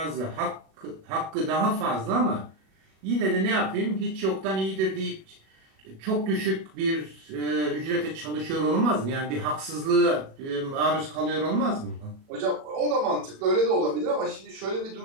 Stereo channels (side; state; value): left; late; 37 ms